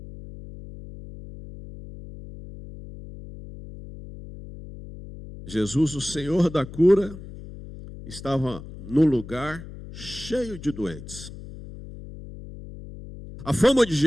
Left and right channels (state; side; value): noise; left; hum, 14 dB below the sound